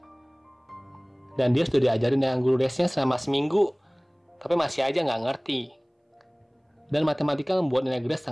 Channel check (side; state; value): both; identical; correlation 1.00